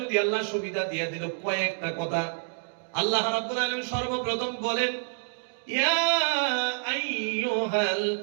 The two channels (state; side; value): silent; left; digital silence